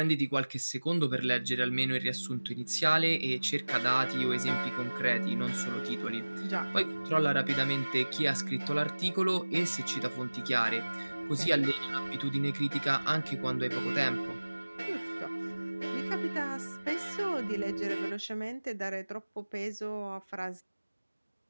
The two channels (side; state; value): both; inverted; correlation -1.00